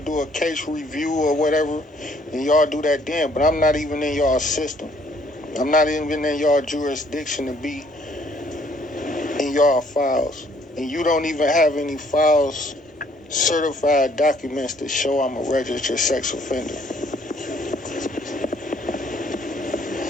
a case review or whatever, then y'all do that then. But I'm not even in y'all system. I'm not even in y'all jurisdiction to be in y'all files. And you don't even have any files, certified documents to show I'm a registered sex offender.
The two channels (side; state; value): both; normal; correlation 0.63